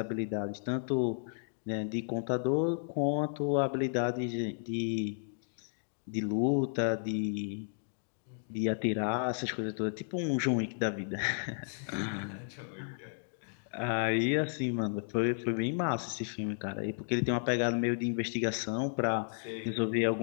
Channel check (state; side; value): silent; right; digital silence